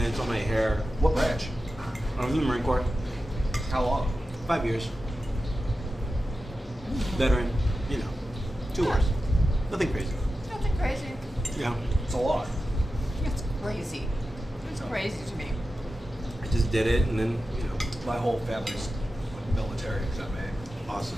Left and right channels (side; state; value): both; normal; correlation 0.92